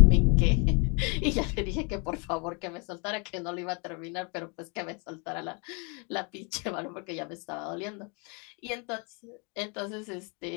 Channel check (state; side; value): quieter; right; 34.1 dB